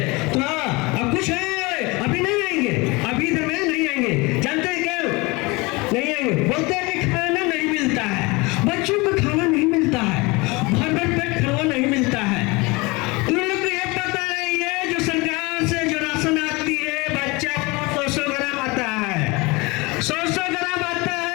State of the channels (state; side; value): quieter; right; 25.0 dB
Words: तो हाँ, अब कुछ है अभी नहीं आएंगे, अभी इधर में नहीं आएंगे। जानते हैं क्या नहीं आएंगे? बोलते हैं कि खाना नहीं मिलता है, बच्चों को खाना नहीं मिलता है, भर भर पेट खाना नहीं मिलता है। तुम लोग को ये पता नहीं है जो सरकार से जो राशन आती है बच्चा 100 ग्राम आता है, 100 ग्राम आता है।